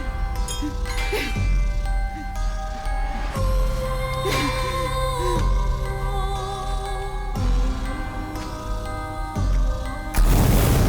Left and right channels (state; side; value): identical; both; correlation 1.00